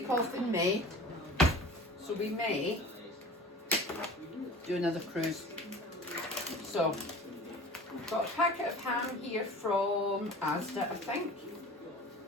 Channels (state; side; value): normal; both; correlation 0.41